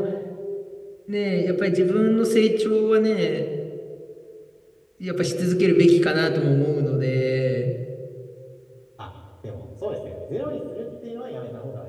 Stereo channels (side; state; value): both; identical; correlation 1.00